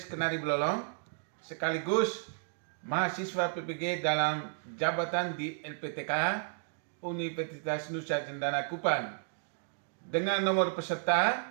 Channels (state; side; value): silent; left; digital silence